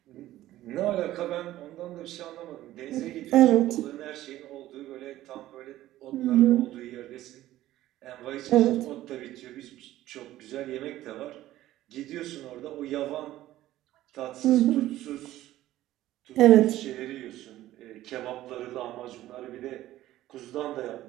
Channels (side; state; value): left; quieter; 14.6 dB